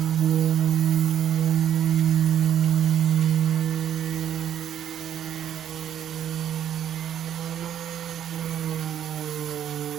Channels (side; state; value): left; quieter; 10.1 dB